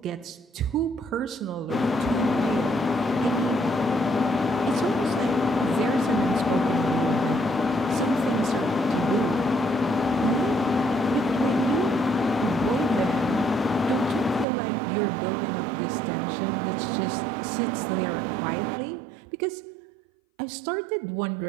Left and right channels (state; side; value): drops out; left; at 14.5 s